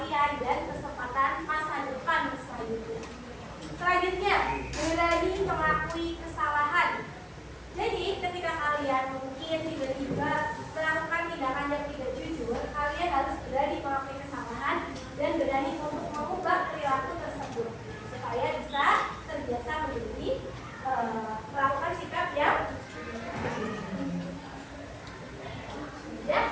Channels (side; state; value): both; identical; correlation 1.00